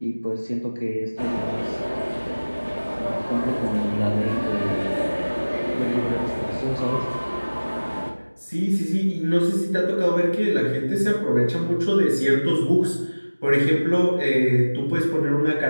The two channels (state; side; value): inverted; both; correlation -1.00